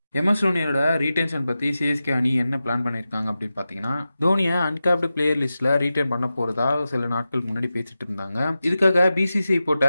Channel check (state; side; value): inverted; both; correlation -0.93